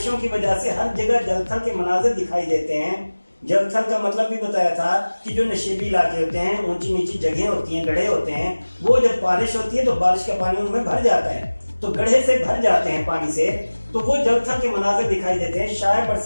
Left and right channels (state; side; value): inverted; both; correlation -1.00